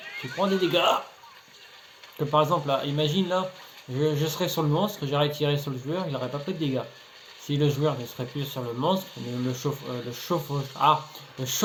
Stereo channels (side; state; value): both; identical; correlation 1.00